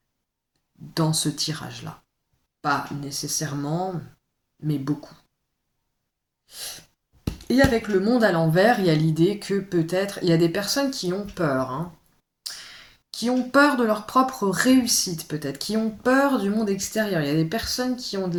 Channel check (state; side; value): identical; both; correlation 1.00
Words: ce tirage-là. Pas nécessairement, mais beaucoup. Et avec le monde à l'envers, il y a l'idée que peut-être, il y a des personnes qui ont peur, qui ont peur de leur propre réussite peut-être, qui ont peur du monde extérieur. Il y a des personnes qui ont